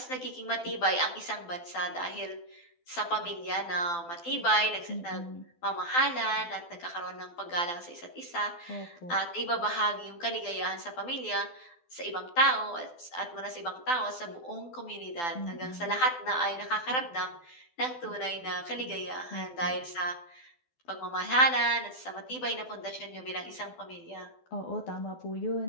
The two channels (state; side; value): late; right; 12 ms